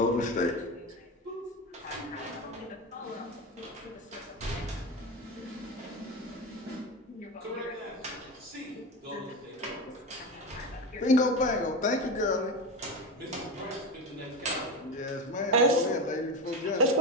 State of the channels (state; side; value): normal; both; correlation 0.20